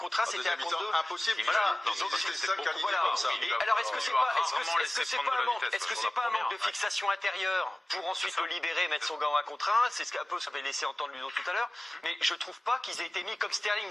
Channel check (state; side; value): normal; both; correlation 0.97